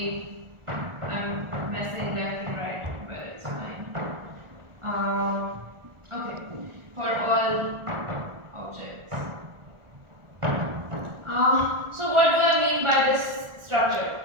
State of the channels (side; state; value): left; late; 1.4 ms